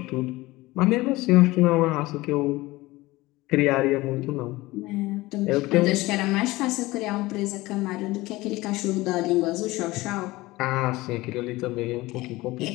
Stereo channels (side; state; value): right; quieter; 19.8 dB